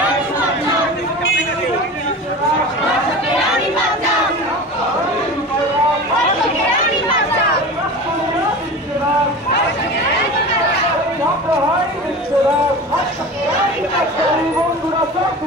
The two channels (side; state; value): both; normal; correlation 0.33